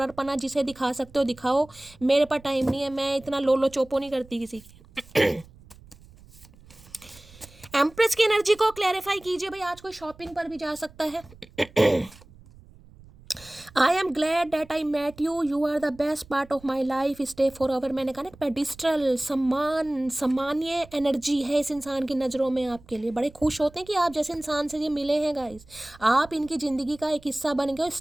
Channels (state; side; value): noise; right; rumble, 23 dB below the sound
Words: पना जिसे दिखा सकते हो दिखाओ, मेरे पास टाइम नहीं है, मैं इतना लोलो चोपो नहीं करती किसी की। एम्प्रेस की एनर्जी को क्लैरिफाई कीजिए भाई, आज कोई शॉपिंग पर भी जा सकता है। I am glad that I met you, you are the best part of my life, stay forever. मैंने कहा ना पेडिस्ट्रल सम्मान्य एनर्जी है इस इंसान की नज़रों में आपके लिए। बड़े खुश होते हैं कि आप जैसे इंसान से ये मिले हैं गाइस, आप इनकी ज़िंदगी का एक हिस्सा बन गए,